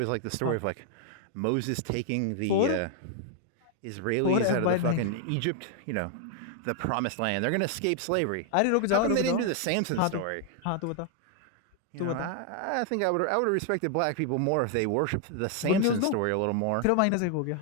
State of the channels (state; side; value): different; both; correlation 0.00